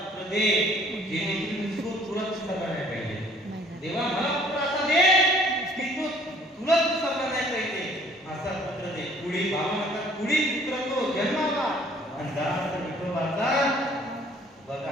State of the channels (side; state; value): both; normal; correlation 0.56